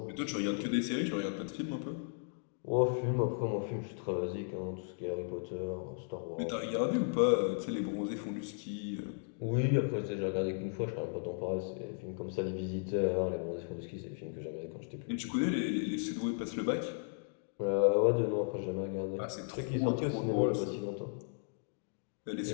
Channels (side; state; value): right; silent; digital silence